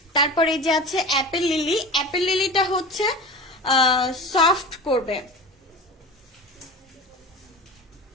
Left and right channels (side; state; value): both; normal; correlation 0.32